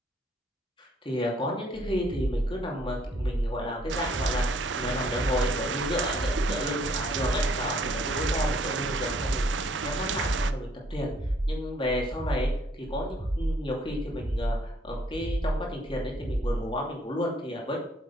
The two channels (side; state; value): both; normal; correlation 0.64